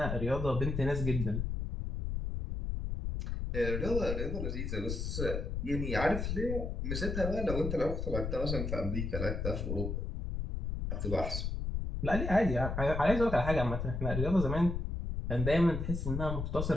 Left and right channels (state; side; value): noise; left; rumble, 3 dB below the sound